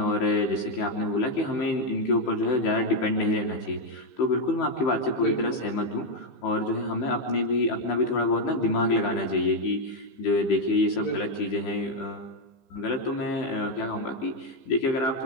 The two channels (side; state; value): right; late; 15 ms